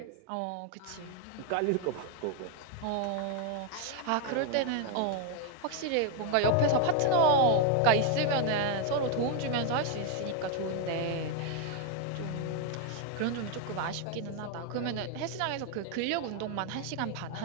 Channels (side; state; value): both; different; correlation 0.01